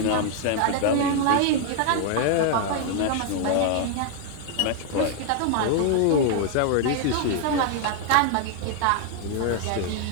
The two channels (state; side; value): different; both; correlation 0.00